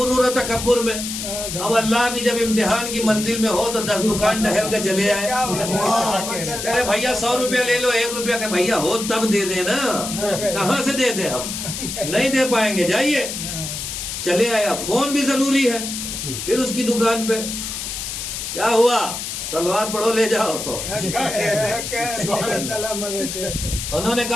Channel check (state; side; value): noise; left; hiss, 6 dB below the sound